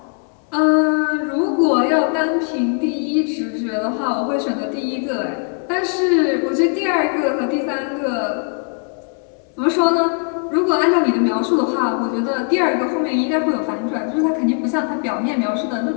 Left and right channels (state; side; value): quieter; right; 38.9 dB